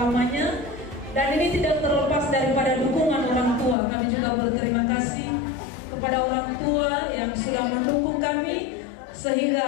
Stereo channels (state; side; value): drops out; right; at 3.8 s